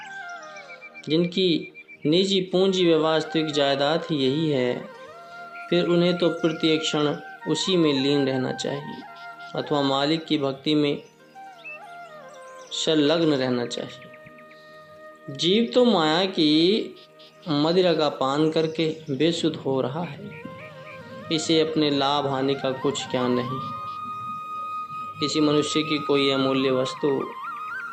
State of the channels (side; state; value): both; identical; correlation 1.00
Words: जिनकी निजी पूंजी व वास्तविक जायदाद ही यही है, फिर उन्हें तो प्रत्येक क्षण उसी में लीन रहना चाहिए अथवा मालिक की भक्ति में संलग्न रहना चाहिए। जीव तो माया की मदिरा का पान करके बेसुध हो रहा है। इसे अपने लाभ हानि का कुछ ज्ञान नहीं। किसी मनुष्य की कोई अमूल्य वस्तु